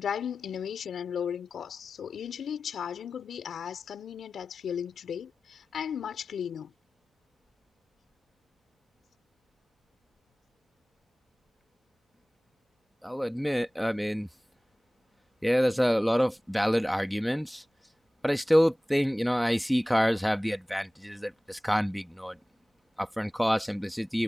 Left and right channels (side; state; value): both; normal; correlation 0.97